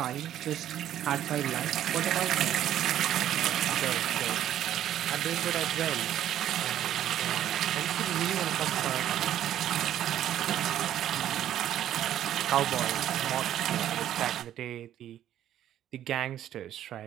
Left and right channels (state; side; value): quieter; left; 11.5 dB